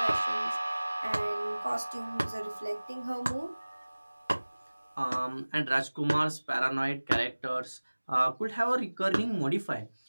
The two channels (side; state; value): both; inverted; correlation -1.00